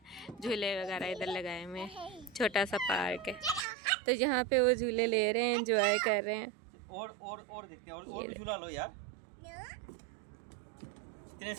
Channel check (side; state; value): left; drops out; at 3.7 s